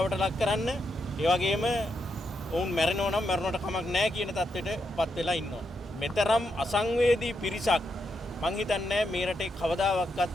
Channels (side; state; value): both; normal; correlation 0.82